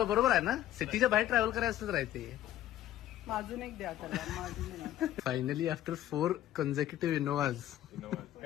बरोबर आहे ना, सिटीच्या बाहेर ट्रॅव्हल करायचं असेल तर आहे ते. अजून एक द्या त्याला. अजून एक. Finally after 4 consecutive Innovas.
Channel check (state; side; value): quieter; right; 12.9 dB